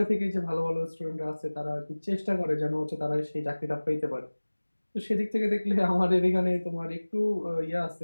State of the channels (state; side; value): inverted; both; correlation -1.00